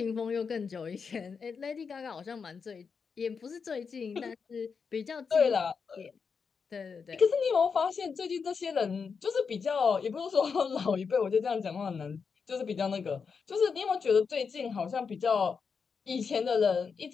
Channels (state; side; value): quieter; right; 5.7 dB